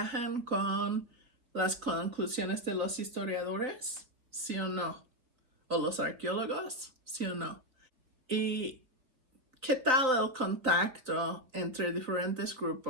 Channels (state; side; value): late; left; 3.9 ms